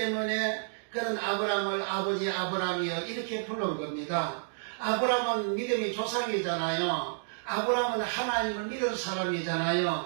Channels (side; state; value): left; silent; digital silence